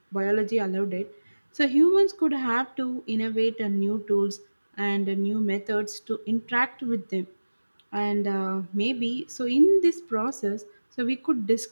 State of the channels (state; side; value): inverted; both; correlation -1.00